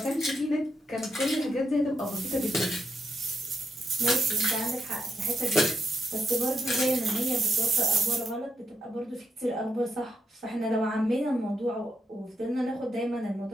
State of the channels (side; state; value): both; normal; correlation 0.81